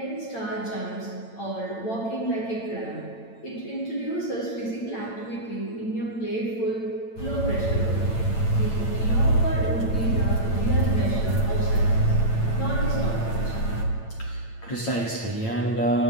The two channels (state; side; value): late; right; 8.9 ms